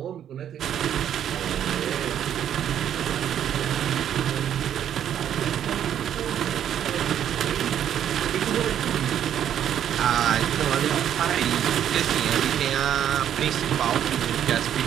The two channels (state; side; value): quieter; left; 10.0 dB